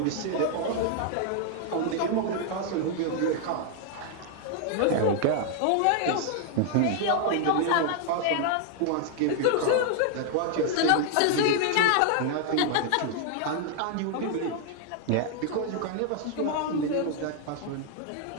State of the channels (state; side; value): different; both; correlation 0.00